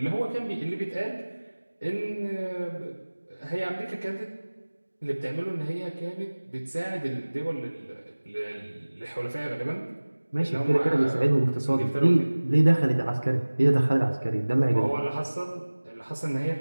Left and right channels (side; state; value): both; inverted; correlation -1.00